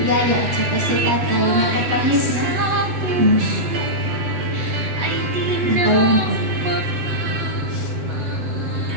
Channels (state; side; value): late; left; 8.1 ms